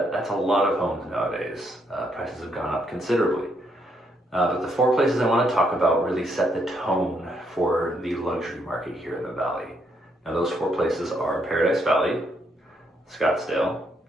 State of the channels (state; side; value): normal; both; correlation 0.75